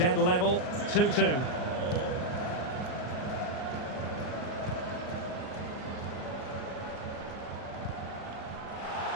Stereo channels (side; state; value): right; late; 39 ms